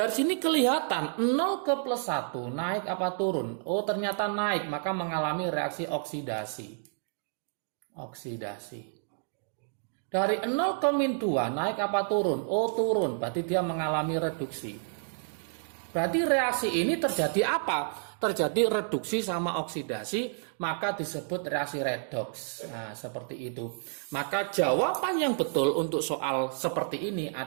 sini kelihatan 0 ke plus 1 naik apa turun? Oh, ternyata naik, maka mengalami reaksi oksidasi. Oksidasi. Dari 0 ke min 2 naik apa turun? Oh, turun, berarti dia mengalami reduksi. Berarti reaksi ini terjadi apa? Terjadi reduksi sama oksidasi, maka disebut reaksi redoks. Nah, seperti itu. Maka jawaban yang betul untuk soal seperti ini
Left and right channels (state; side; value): silent; left; digital silence